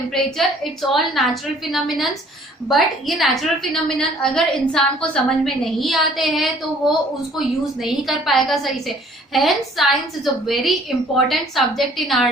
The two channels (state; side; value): normal; both; correlation 0.57